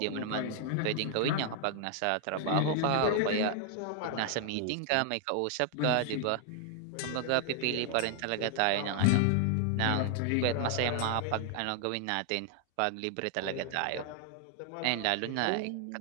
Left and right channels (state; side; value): different; both; correlation 0.00